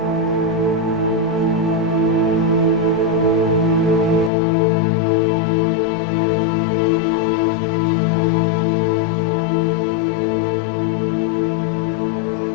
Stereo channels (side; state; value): right; drops out; at 4.3 s